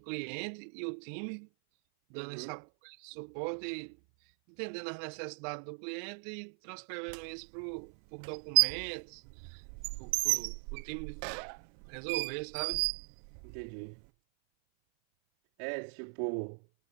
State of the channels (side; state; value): left; silent; 52 dB below the other